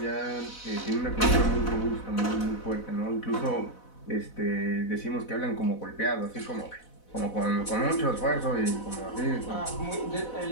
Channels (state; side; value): late; right; 4.0 ms